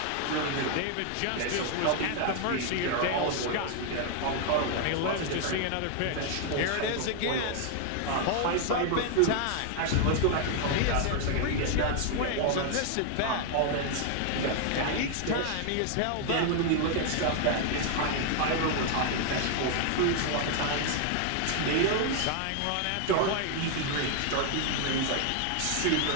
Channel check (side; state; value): both; different; correlation 0.00